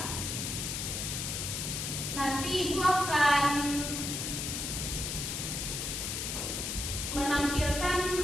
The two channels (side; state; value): left; noise; hiss, 3 dB below the sound